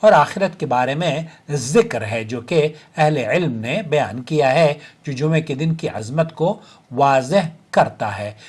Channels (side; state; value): both; identical; correlation 1.00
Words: آخرت کے بارے میں ذکر ہے، جو کہ اہل علم نے بیان کیا ہے، جو جمعے کے دن کی عظمت کو واضح کرتا ہے۔